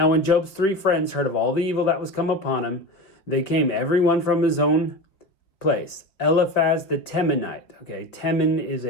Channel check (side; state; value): right; late; 5.0 ms